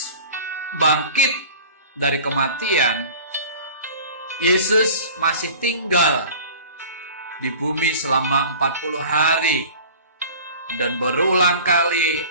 bangkit dari kematian, Yesus masih tinggal di bumi selama 40 hari dan berulang kali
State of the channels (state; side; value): inverted; both; correlation -0.42